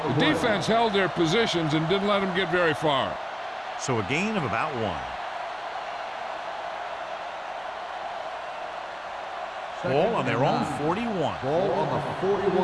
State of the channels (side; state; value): both; identical; correlation 1.00